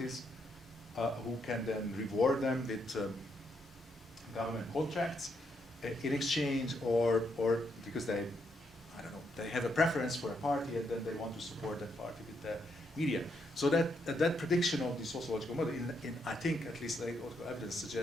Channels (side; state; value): both; normal; correlation 0.77